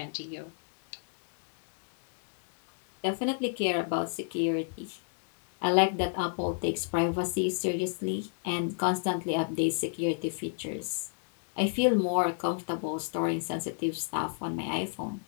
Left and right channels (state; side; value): silent; right; digital silence